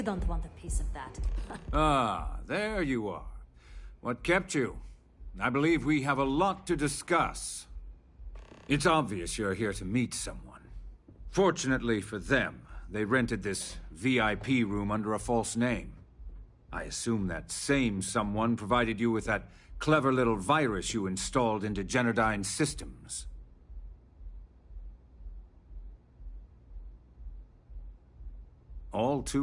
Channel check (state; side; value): identical; both; correlation 1.00